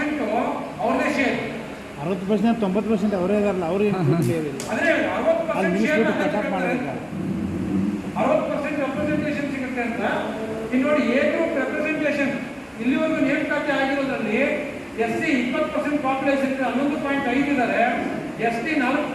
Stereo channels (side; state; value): both; identical; correlation 1.00